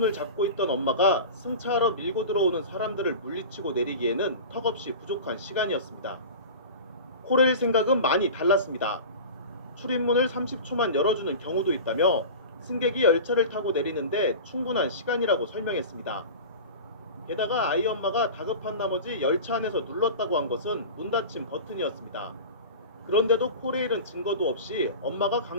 잡고 있던 엄마가 승차하러 밀고 들어오는 사람들을 물리치고 내리기에는 턱없이 부족한 시간이었습니다. 코레일 생각은 많이 달랐습니다. 출입문을 30초만 열어주는 경우도 있다며 승객이 열차를 타고 내리는데 충분한 시간이라고 설명했습니다. 게다가 아이 엄마가 다급한 나머지 열차 안에서 눌렀다고 한 것은 문 닫힘 버튼이었습니다. 그런데도 코레일은 증거도 없이 엄마가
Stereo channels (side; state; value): both; inverted; correlation -0.33